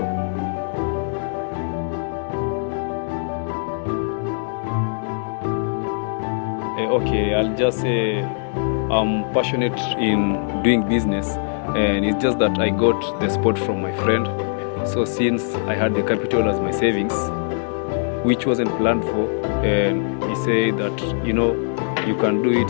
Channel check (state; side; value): silent; right; digital silence